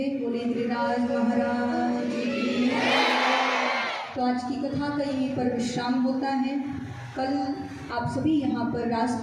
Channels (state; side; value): identical; both; correlation 1.00